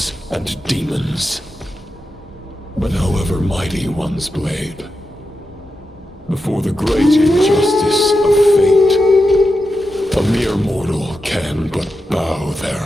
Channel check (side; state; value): both; normal; correlation 0.89